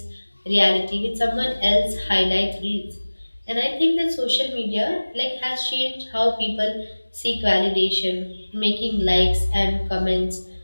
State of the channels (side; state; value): both; inverted; correlation -1.00